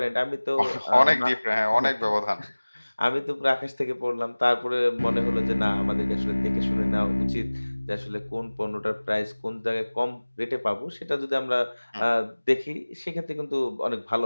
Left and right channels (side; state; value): both; inverted; correlation -1.00